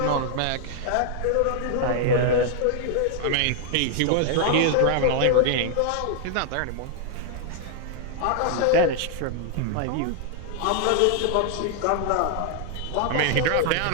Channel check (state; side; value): different; both; correlation 0.00